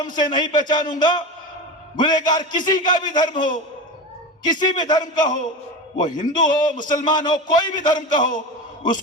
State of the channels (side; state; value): both; normal; correlation 0.26